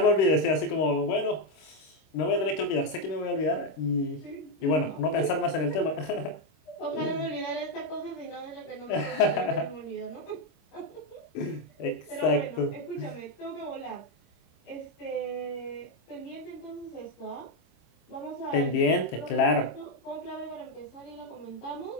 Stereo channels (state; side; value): late; right; 26 ms